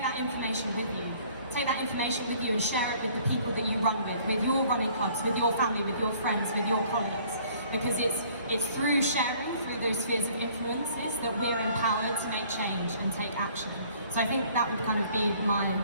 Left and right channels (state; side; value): inverted; both; correlation -0.57